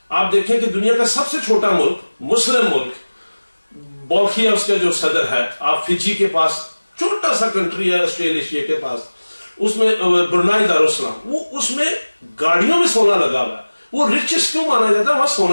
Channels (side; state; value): both; inverted; correlation -1.00